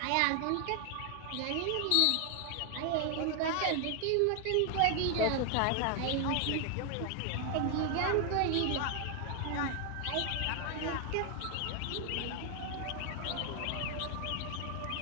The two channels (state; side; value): different; both; correlation 0.00